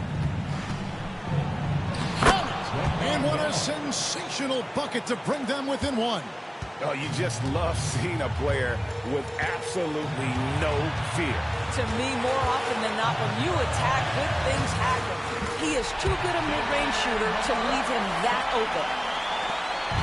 And what a sensational bucket to bring them within 1. Oh, you just love seeing a player with absolutely no fear. To me, more often than not, when you attack, good things happen. He is too good a mid-range shooter to leave him that open.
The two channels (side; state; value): both; identical; correlation 1.00